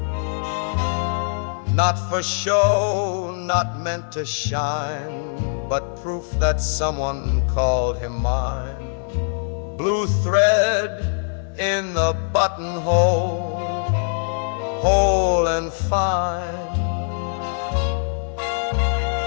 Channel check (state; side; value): silent; right; 64 dB below the other